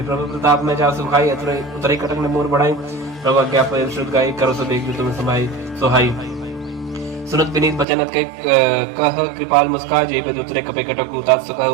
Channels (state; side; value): drops out; left; at 7.9 s